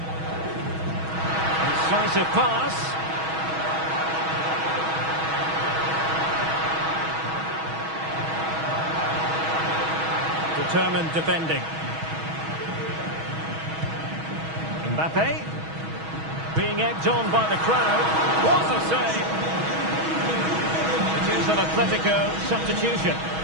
Incisive pass. Determined defending. Mbappe. Being egged on by the crowd. What a save! It is an Atletico substitution.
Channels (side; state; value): left; late; 6.2 ms